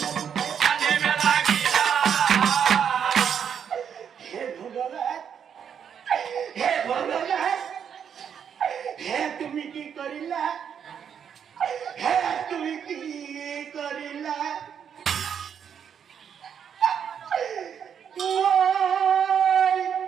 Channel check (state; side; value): quieter; left; 7.9 dB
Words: তুমি কি কৰিলা তুমি কি কৰিলা